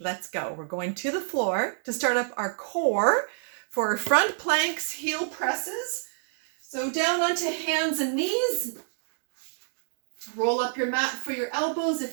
let's go. We're going to the floor to start up our core for front planks, heel presses. So down onto hands and knees. Roll up your mat for your elbows if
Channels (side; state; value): left; silent; digital silence